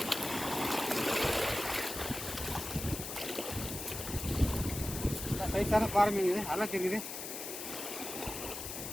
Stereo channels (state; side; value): noise; left; hiss, 7 dB below the sound